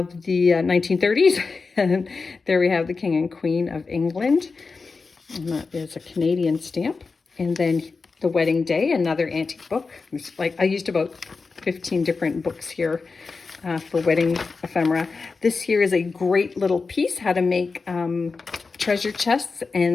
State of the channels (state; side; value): quieter; right; 4.4 dB